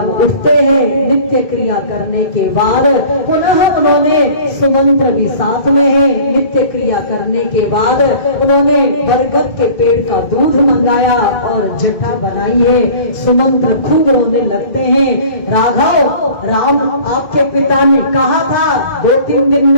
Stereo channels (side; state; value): right; late; 2.2 ms